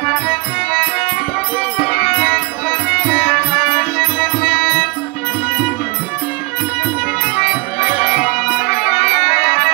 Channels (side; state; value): left; quieter; 26.3 dB